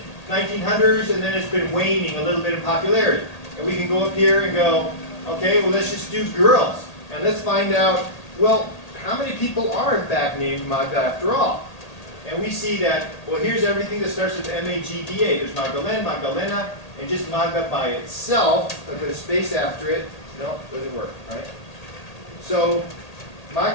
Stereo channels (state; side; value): late; right; 1.8 ms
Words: and then it's been waning a little bit in popularity. And we can go up here and go, okay, well, let's just do girls. And let's find out, well, how many people are in fact named Magda after all? And we see that, well, here's everything that starts with M-A-G-D-A. There's Magdalene, Magdalena, and just Magda by itself. If I put a space after it, no, doesn't work, right? So